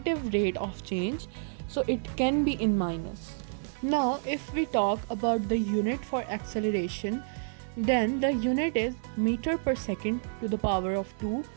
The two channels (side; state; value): left; silent; 58 dB below the other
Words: rate of change, so it can be in minus. Now if we talk about the unit for acceleration, then the unit is meter per second to the power of 2,